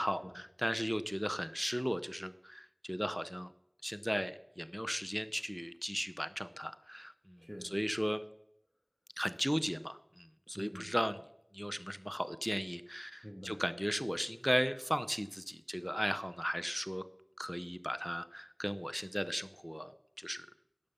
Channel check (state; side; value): identical; both; correlation 1.00